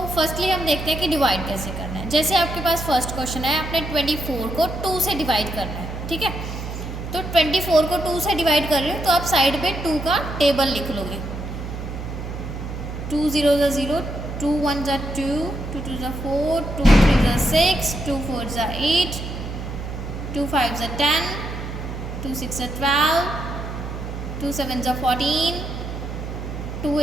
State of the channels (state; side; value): noise; right; hum, 7 dB below the sound